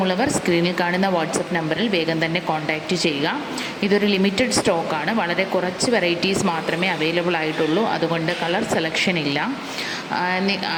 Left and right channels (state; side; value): identical; both; correlation 1.00